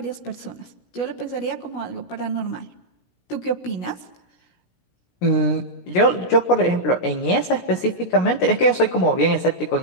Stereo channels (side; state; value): right; late; 16 ms